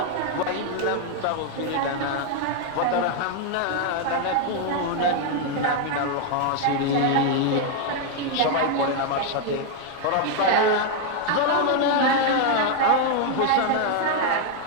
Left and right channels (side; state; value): both; different; correlation 0.00